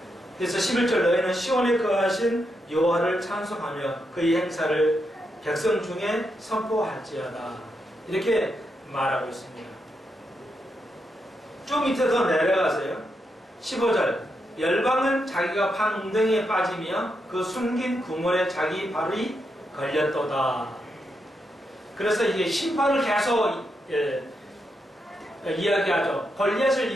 그래서 11절 너희는 시온에 거하신 여호와를 찬송하며 그의 행사를 백성 중에 선포할지어다. 이렇게 말하고 있습니다. 좀 밑에 더 내려가세요. 15절 열방은 자기가 판 웅덩이에 빠지며 그 숨긴 구멍에 자기 발이 걸렸도다. 그래서 이게 심판을 계속 이야기하죠. 골리앗을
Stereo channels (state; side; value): normal; both; correlation 0.83